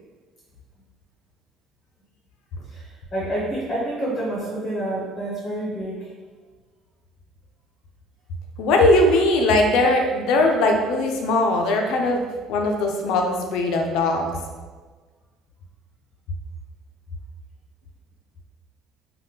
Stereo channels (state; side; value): normal; both; correlation 0.46